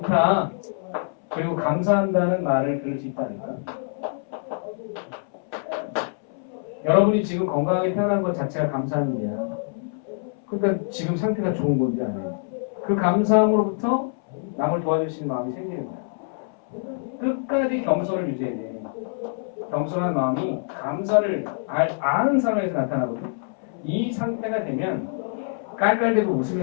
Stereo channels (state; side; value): silent; right; 62 dB below the other